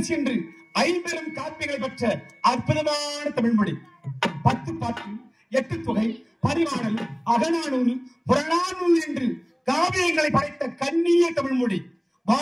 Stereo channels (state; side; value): identical; both; correlation 1.00